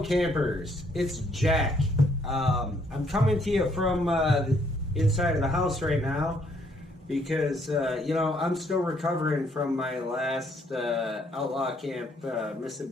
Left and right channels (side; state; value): both; normal; correlation 0.68